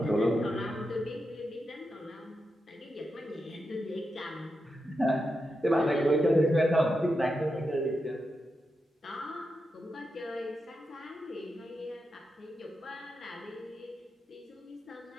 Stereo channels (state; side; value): normal; both; correlation 0.87